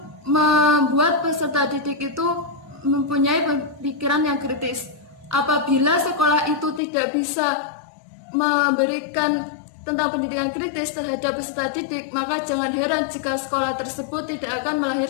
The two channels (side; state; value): right; drops out; at 6.8 s